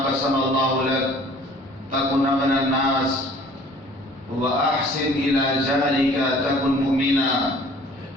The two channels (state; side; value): normal; both; correlation 0.51